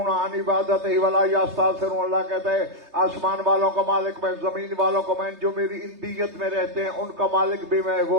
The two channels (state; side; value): late; left; 3.3 ms